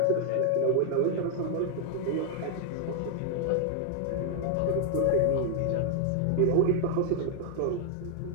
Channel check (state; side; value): different; both; correlation 0.00